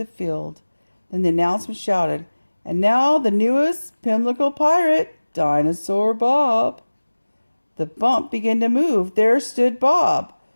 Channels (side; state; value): both; inverted; correlation -1.00